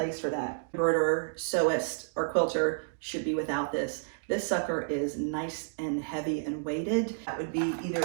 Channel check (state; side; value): silent; left; digital silence